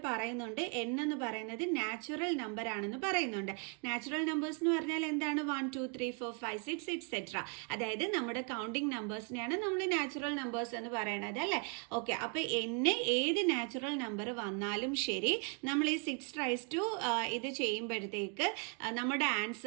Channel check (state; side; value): quieter; left; 37.0 dB